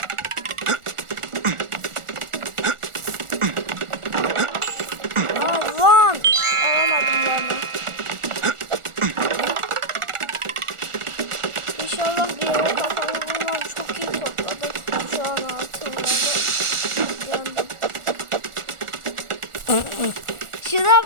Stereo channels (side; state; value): left; late; 1.4 ms